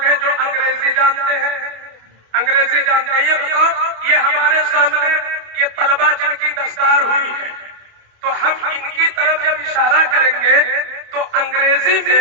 ہیں جو انگریزی جانتے ہیں، انگریزی جانتے ہیں، یہ بتاؤ یہ ہمارے سامنے یہ طلبہ جن کی دستار ہوئی ہے تو ہم ان کی طرف جب اشارہ کریں گے تو انگریزی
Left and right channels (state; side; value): late; left; 28 ms